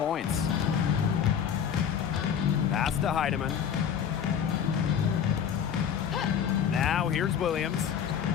Pass to Heidemann. Now here's Williams.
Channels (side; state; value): right; quieter; 8.1 dB